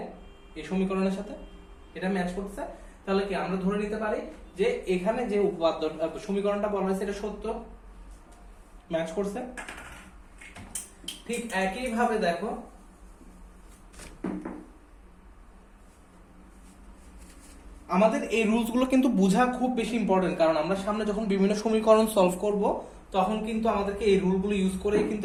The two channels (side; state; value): both; identical; correlation 1.00